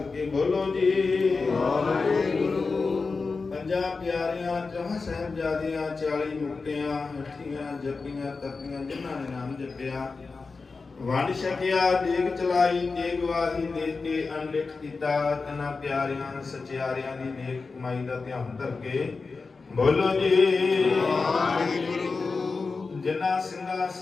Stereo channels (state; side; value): quieter; right; 4.3 dB